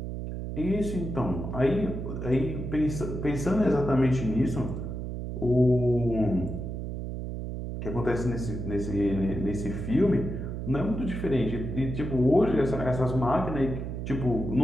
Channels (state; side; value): noise; right; hum, 5 dB below the sound